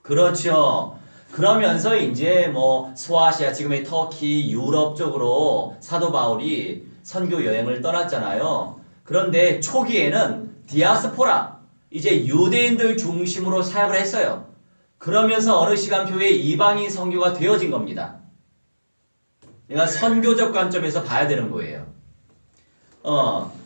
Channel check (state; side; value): inverted; both; correlation -1.00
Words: 그렇죠. 그러면서 이제 소아시아, 지금의 터키, 유럽 쪽으로 사도 바울이 선교 여행을 떠났잖아요. 그런데 초기에는 디아스포라, 이제 유대인들 중심으로 사역을 했어요. 그러면서 어느 시간표에 이방인 선교가 되어진 겁니다. 내가 선교적 관점에서 봐야 되는 거예요.